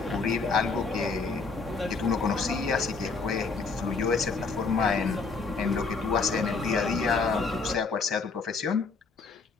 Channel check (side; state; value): right; quieter; 4.4 dB